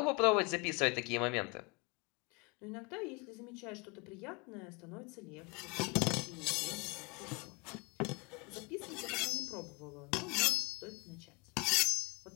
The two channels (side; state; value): right; quieter; 29.1 dB